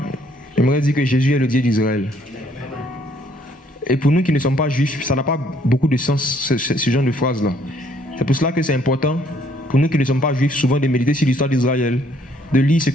j'aimerais dire que Jésus est le Dieu d'Israël. Et pour nous qui ne sommes pas juifs, ça n'a pas beaucoup de sens, ce genre de phrase-là. C'est pour cela que c'est important, pour nous qui ne sommes pas juifs, souvent de méditer sur l'histoire d'Israël, de lire ce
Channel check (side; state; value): both; normal; correlation 0.65